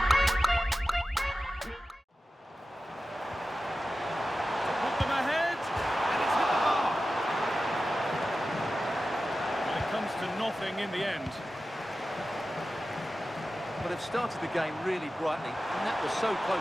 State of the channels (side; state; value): both; normal; correlation 0.94